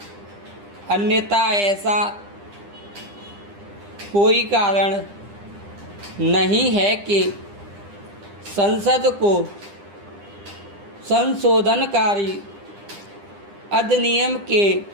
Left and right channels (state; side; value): late; left; 9.9 ms